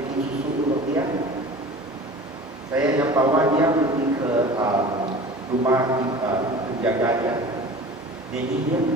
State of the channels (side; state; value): both; normal; correlation 0.39